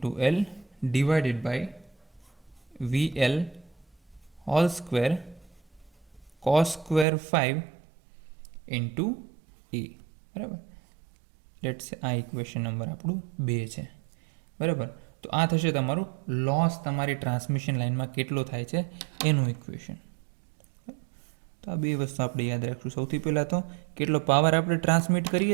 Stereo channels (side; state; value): left; drops out; at 7.1 s